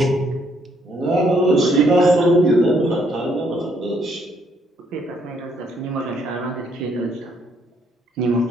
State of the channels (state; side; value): normal; both; correlation 0.70